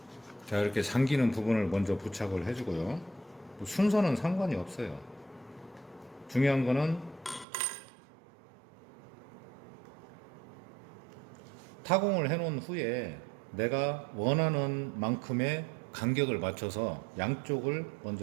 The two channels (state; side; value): drops out; left; at 7.5 s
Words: 자, 이렇게 잠기는 부분을 먼저 부착을 해주고요. 순서는 상관이 없어요. 중요한 거는 타공을 해놓은 후에 내가 원하는 만큼의 간격을 맞춰서 양쪽을